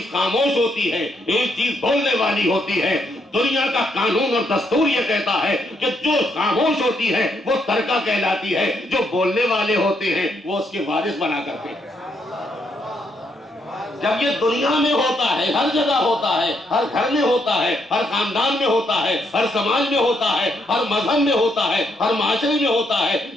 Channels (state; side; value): normal; both; correlation 0.76